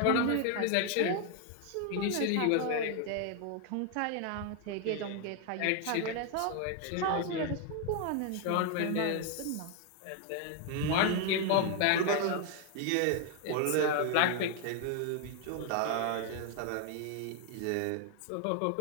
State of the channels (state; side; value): different; both; correlation 0.00